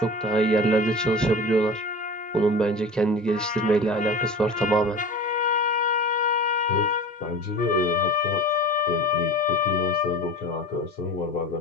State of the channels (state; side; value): normal; both; correlation 0.35